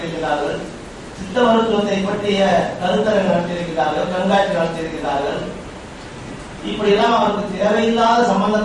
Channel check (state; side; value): identical; both; correlation 1.00